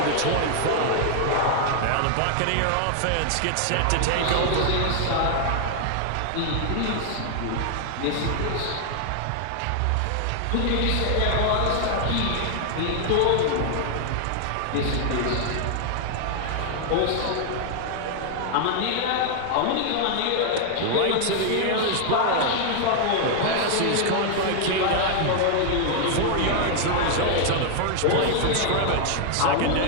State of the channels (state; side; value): different; both; correlation 0.00